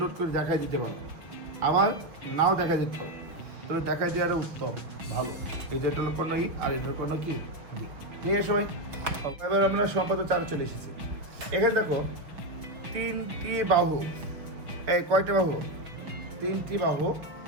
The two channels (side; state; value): left; late; 6.1 ms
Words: করে দেখাই দিতে পারো, আবার নাও দেখা দিতে পারো, তবে দেখাই দেওয়ার উত্তম ভালো। এই যে এটা হলো কর্ণ ই আর এটার কর্ণ কি ডি। ঠিক আছে সবাই, এবার আমরা সম্পাদক 4 চলে এসেছি। এখানে দেখো 3টি বাহু, এই কয়টা বাহু? 3টি বাহু